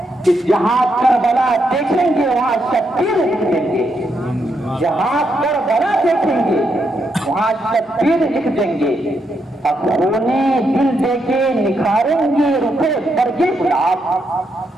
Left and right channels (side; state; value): both; normal; correlation 0.80